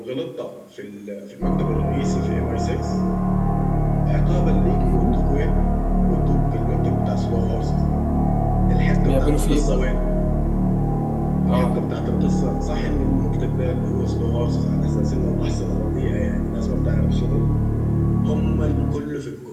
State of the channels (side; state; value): both; identical; correlation 1.00